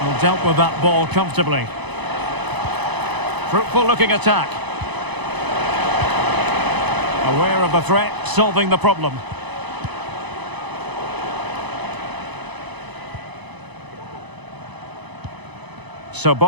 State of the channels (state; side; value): late; left; 1.0 ms